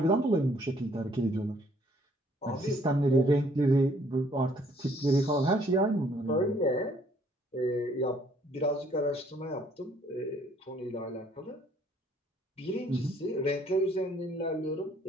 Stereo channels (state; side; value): normal; both; correlation 0.63